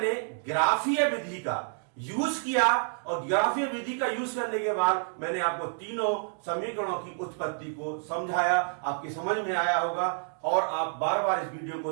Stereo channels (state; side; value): silent; left; digital silence